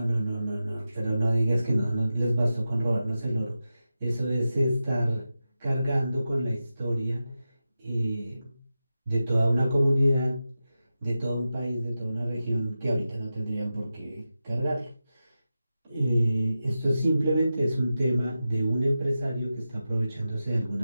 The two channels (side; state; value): both; inverted; correlation -0.92